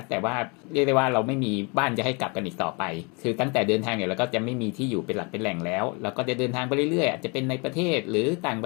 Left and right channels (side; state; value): right; quieter; 31.0 dB